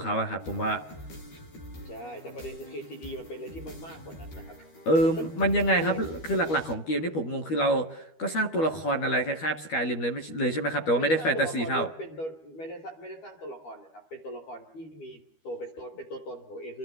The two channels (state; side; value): late; right; 13 ms